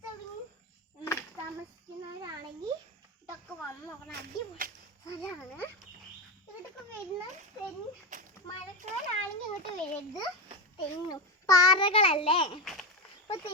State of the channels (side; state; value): both; normal; correlation 0.15